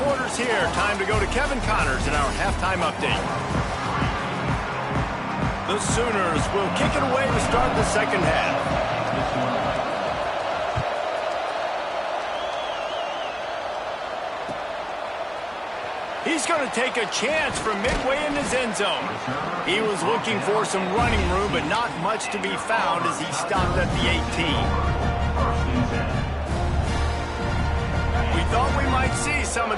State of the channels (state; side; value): identical; both; correlation 1.00